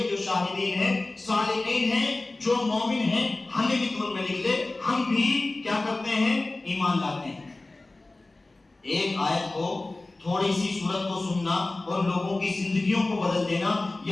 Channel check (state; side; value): quieter; right; 3.0 dB